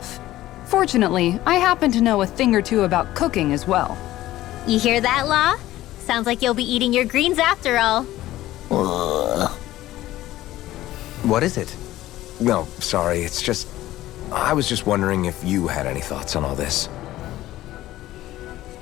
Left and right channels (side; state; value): right; quieter; 15.3 dB